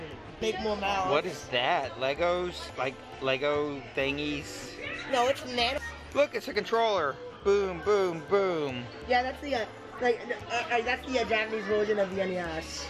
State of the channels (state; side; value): identical; both; correlation 1.00